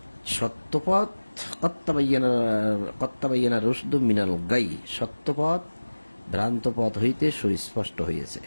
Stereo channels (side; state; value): both; inverted; correlation -1.00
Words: সত্যপথ কত্তাবাইয়ানা রুশদু মিনাল গাই, সত্যপথ ভ্রান্ত পথ হইতে সুস্পষ্ট হইয়াছে